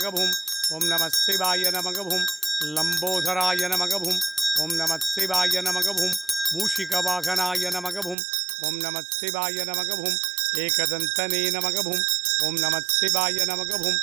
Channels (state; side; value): drops out; left; at 8.2 s